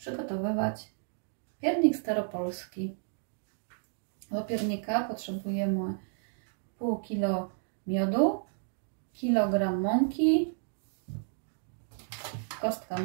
piernik staropolski. Do piernika potrzebujemy pół kilo miodu, kilogram mąki, kostka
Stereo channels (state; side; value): silent; left; 56 dB below the other